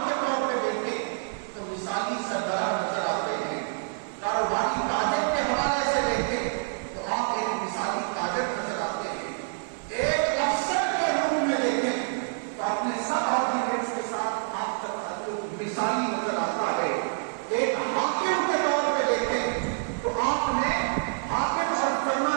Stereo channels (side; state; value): left; silent; 60 dB below the other